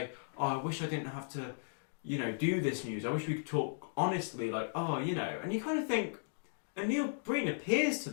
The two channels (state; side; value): silent; right; digital silence